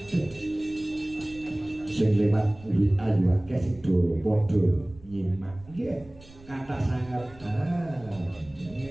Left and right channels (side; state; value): right; noise; rumble, 22 dB below the sound